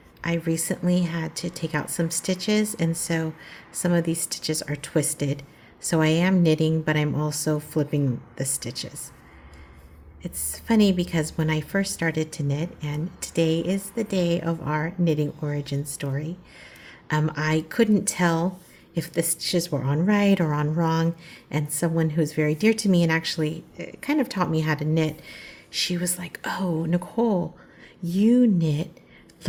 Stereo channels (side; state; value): both; identical; correlation 1.00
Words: I recently had to take out some stitches, and so some of these stitches are twisted. So I am knitting, but I'm also flipping the stitches. It's funny because when I first started to knit, and today is the day of our knitting origin story, I couldn't tell if the stitches were on right or on wrong. And someone who's very dear to me and actually kind of taught me how to knit, she was like, "Oh, Nicole, you knit